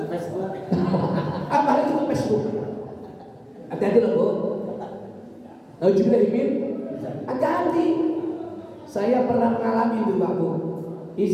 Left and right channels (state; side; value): identical; both; correlation 1.00